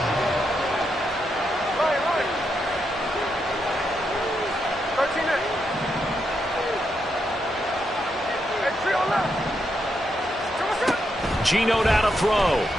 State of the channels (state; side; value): normal; both; correlation 0.82